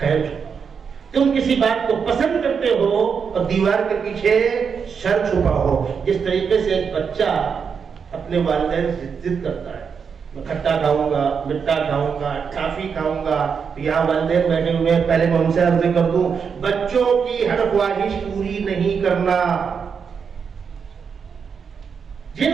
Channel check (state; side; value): quieter; left; 6.3 dB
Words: تم کسی بات کو پسند کرتے ہو اور دیوار کے پیچھے شر چھپا ہو. جس طریقے سے ایک بچہ اپنے والدین سے ضد کرتا ہے, میں کھٹا کھاؤں گا, مٹھا کھاؤں گا, ٹافی کھاؤں گا. یہاں والدین بیٹھے ہوئے ہیں, پہلے میں ان سے عرض کر دوں, بچوں کی ہر خواہش پوری نہیں کرنا. جن